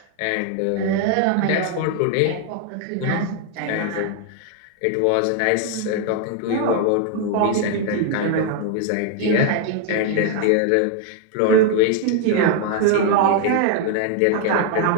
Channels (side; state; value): both; different; correlation 0.00